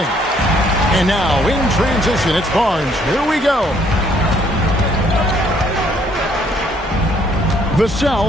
And now, in transition, it's Barnes. Here we go.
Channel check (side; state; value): both; normal; correlation 0.65